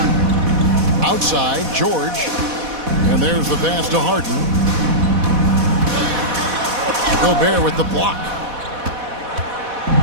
Outside, George. And there's the pass to Harden. Gobert with the block.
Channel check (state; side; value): late; left; 4.1 ms